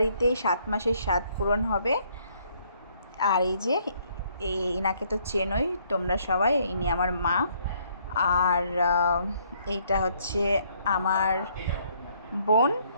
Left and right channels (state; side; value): inverted; both; correlation -0.66